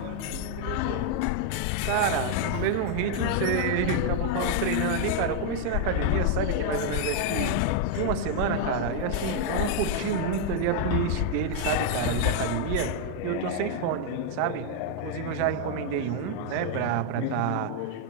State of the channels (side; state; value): both; different; correlation 0.00